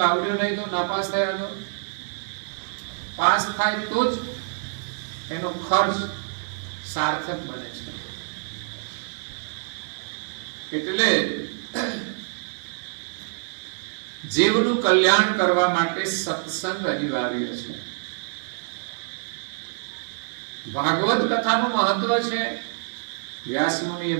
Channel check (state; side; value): silent; left; 61 dB below the other